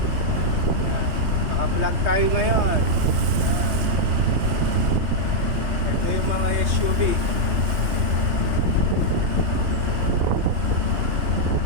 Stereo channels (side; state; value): left; late; 3.2 ms